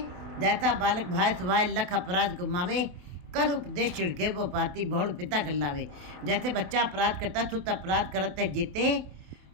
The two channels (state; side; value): late; left; 27 ms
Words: जैसा बालक भाई सुभाय लख अपराध को मावे, कर उपदेश छिड़के वो पाती बहुड़ पिता गल्लावे। जैसे बच्चा अपराध करता सुत अपराध करते जेते,